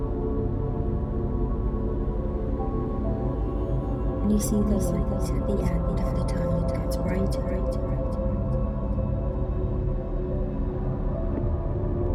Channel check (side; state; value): both; identical; correlation 1.00